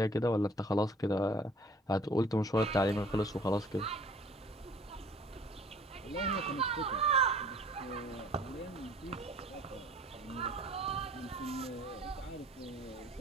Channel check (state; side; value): normal; both; correlation 0.53